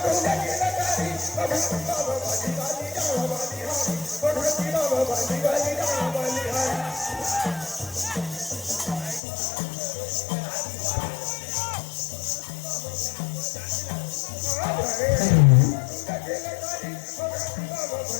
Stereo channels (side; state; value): right; drops out; at 9.2 s